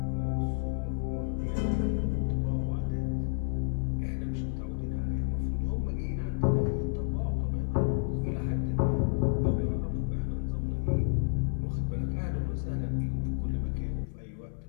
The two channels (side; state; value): right; silent; 57 dB below the other